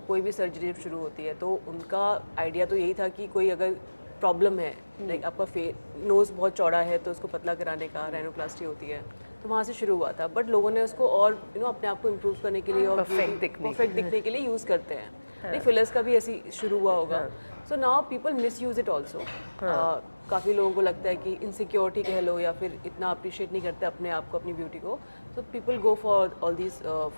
कोई भी सर्जरी जब शुरू होती है तो उनका आइडिया तो यही था कि कोई अगर प्रॉब्लम है, लाइक आपका नोज़ बहुत चौड़ा है तो उसको पतला कराने का रैनोप्लास्टी होती है, तो वहाँ से शुरू हुआ था। बट लोगों ने उसको और अपने आप को इम्प्रूव करने के लिए और परफेक्ट दिखने के लिए यूज़ करते हैं। नहीं, फिलर्स का भी ऐसी शुरू हुआ होगा। So now people miss use it also. काफ़ी लोगों को लगता है कि इनसिक्योरिटी कह लो, या फिर इतना अप्रिशिएट नहीं करते अपने आप को, अपनी ब्यूटी को। So people go for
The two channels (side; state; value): both; inverted; correlation -1.00